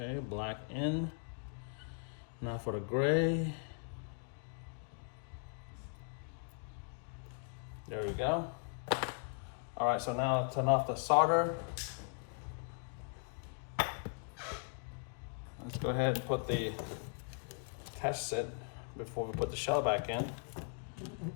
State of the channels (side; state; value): right; silent; 52 dB below the other